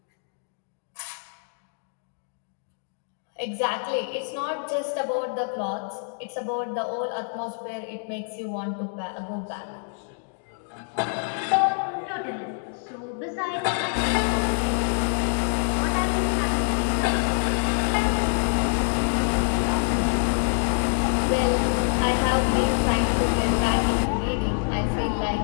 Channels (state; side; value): silent; right; 61 dB below the other